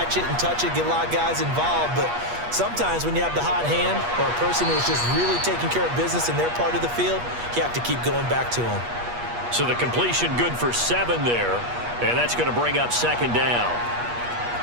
it and touch it, get a lot of guys involved. But sometimes when you have the hot hand or a person who's just really taking care of business in their part of the field, you have to keep going back to them. So the completion good for 7 there. And that's going to bring up 2nd down.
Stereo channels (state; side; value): late; left; 8.4 ms